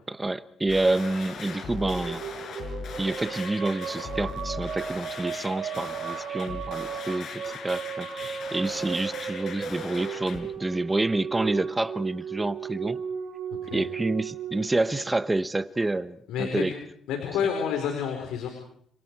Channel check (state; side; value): normal; both; correlation 0.89